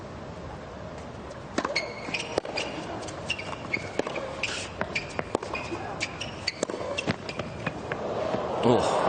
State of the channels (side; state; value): both; identical; correlation 1.00